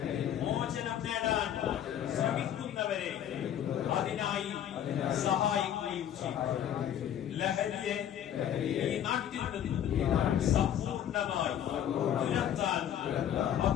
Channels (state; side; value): quieter; right; 10.2 dB